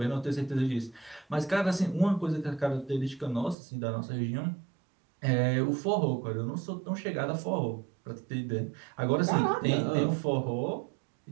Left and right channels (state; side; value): drops out; left; at 3.6 s